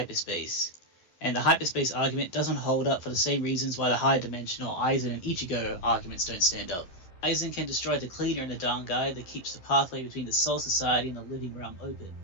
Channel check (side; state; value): right; late; 11 ms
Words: And the hyperspace argument doesn't hold up for the same reasons why the high dimensional Aizen and Ichigo arguments don't stand up. Aizen can destroy the cleaner in the Dangai that keeps the pathway between the Soul Society and the living realm open.